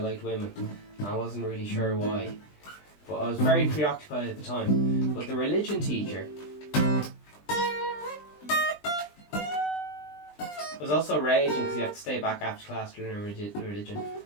women. I wasn't really sure why, but I was very preoccupied at the time. But the religion teacher was also raging because he had to stay back after class to learn religion.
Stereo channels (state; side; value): late; right; 20 ms